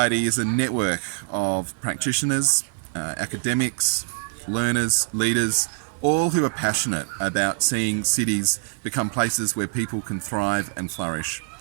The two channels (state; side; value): silent; left; digital silence